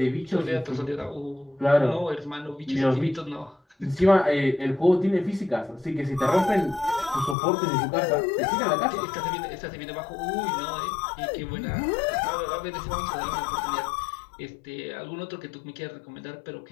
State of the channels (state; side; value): drops out; right; at 7.4 s